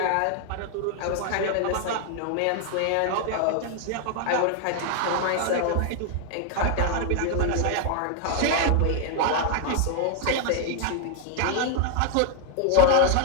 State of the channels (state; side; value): different; both; correlation 0.00